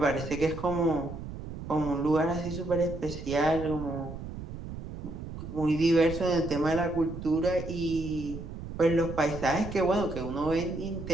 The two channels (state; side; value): noise; right; rumble, 9 dB below the sound